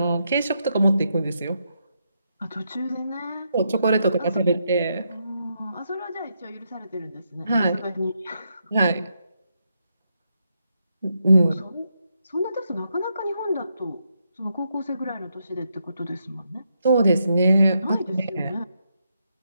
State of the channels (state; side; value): inverted; both; correlation -0.81